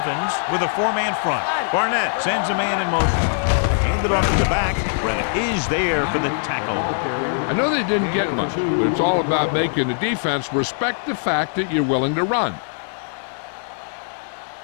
with a 4-man front. Barnett sends a man in motion. Handed off to the back. Brett is there for the tackle. I know they didn't get much, but it's all about making the defense respect the fact that you're willing to run.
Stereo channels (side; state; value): right; silent; digital silence